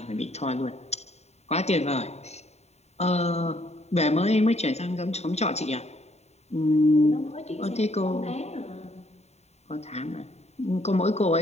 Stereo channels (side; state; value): right; late; 0.32 ms